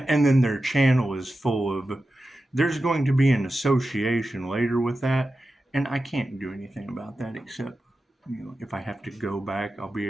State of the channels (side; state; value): both; normal; correlation 0.92